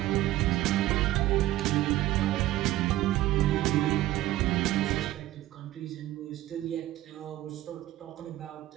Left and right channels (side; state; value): left; quieter; 15.0 dB